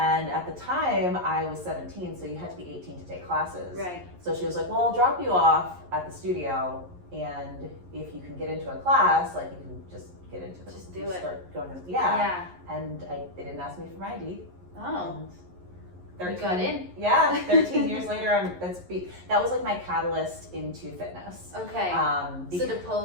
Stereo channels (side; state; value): left; late; 11 ms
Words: at the time I was 17, so you had to be 18 to take classes. Right. So she was like, well, I'll drop you off at the studio, and if you can get into a class, like, you can just get into the, just do it. Start going to And they didn't ask me for my ID. Oh. And you got in. Yeah, 13 years later, that was like my catalyst into fitness. Okay. So the